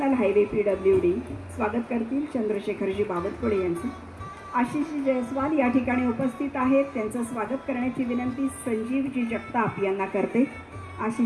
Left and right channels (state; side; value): identical; both; correlation 1.00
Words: highway PWD स्वागत करतील चंद्रशेखरजी बावनकुळे यांचे। आशिषजी जयस्वाल या ठिकाणी उपस्थित आहेत, त्यांचं स्वागत करण्याची विनंती संजीवजी जगताप यांना करते।